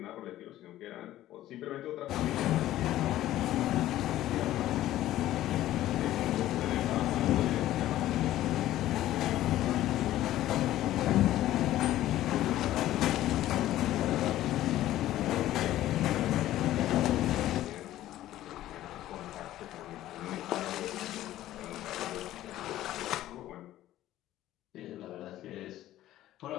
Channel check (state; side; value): quieter; right; 14.1 dB